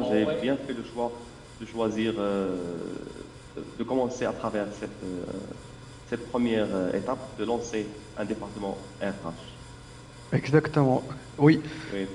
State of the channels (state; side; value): identical; both; correlation 1.00